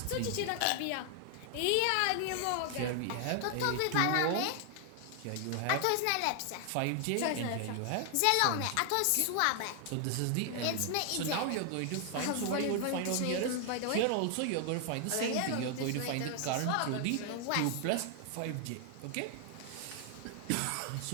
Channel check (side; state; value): both; different; correlation 0.00